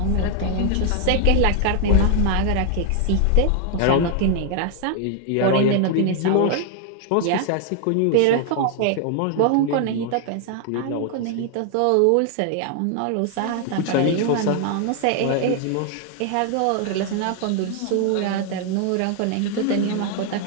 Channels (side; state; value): both; different; correlation 0.00